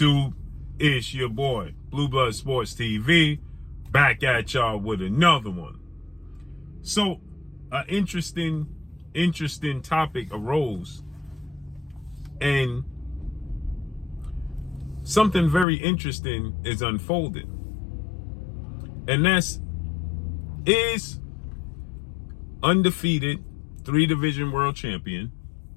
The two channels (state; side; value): drops out; right; at 15.7 s